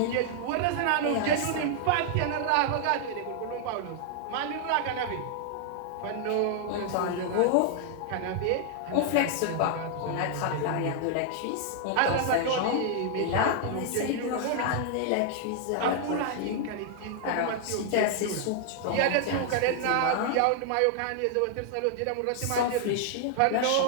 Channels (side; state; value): both; different; correlation 0.00